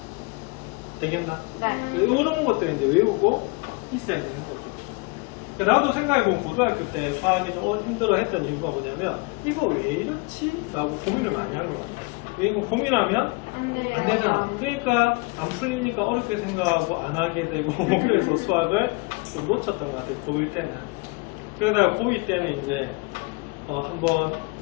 되겠나? 네. 이런 것들 이제 외우고 있어야 되는 거죠. 그러니까 나도 생각해보면 고등학교 때 수학이 좀 힘들어 했던 이유가 뭐냐면 이거 왜 이렇지? 라고 고민을 많이 한 것 같아요. 왜 이거 고민하면 안 되잖아. 그러니까 안 풀리니까 어렵게 생각하고 안 하게 되고 그래서 수학을 좀 놓쳤던 것 같아요. 고1 때는. 그러다가 고2 때는 이제 한번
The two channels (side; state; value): right; quieter; 28.4 dB